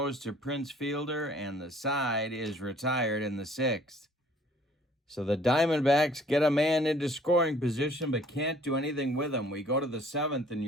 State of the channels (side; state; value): both; normal; correlation 0.56